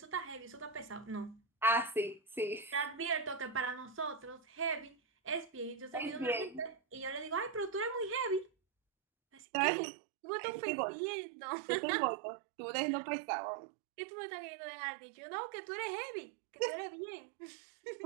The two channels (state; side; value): drops out; left; at 9.4 s